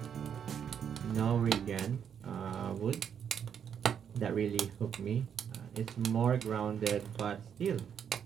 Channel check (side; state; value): left; quieter; 8.1 dB